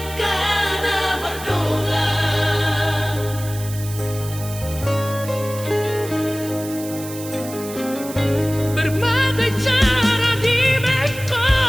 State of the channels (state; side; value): noise; right; hiss, 13 dB below the sound